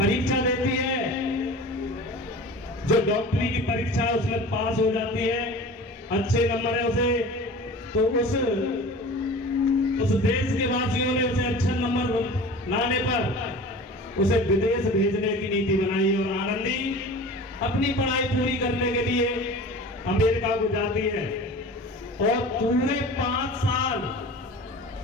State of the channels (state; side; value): normal; both; correlation 0.38